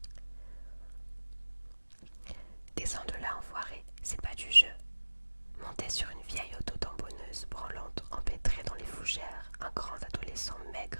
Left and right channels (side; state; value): both; inverted; correlation -1.00